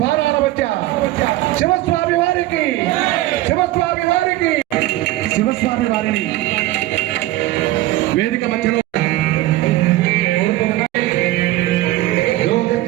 మధ్య శివస్వామి వారికి శివస్వామి వారిని వేదిక మధ్యలో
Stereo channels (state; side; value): quieter; left; 16.6 dB